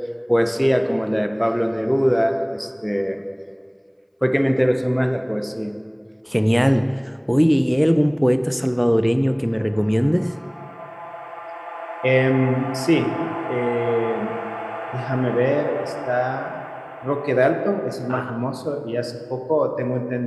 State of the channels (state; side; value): identical; both; correlation 1.00